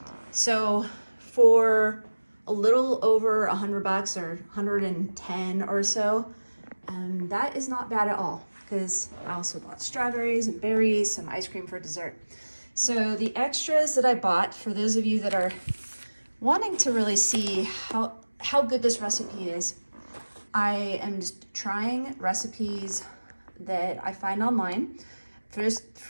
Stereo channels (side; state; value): both; inverted; correlation -1.00